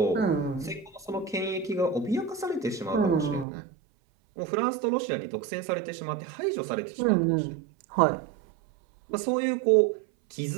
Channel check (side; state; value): left; drops out; at 3.5 s